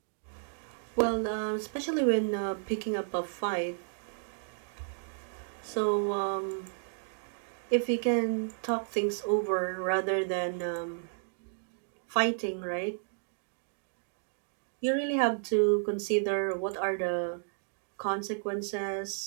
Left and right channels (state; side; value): silent; left; digital silence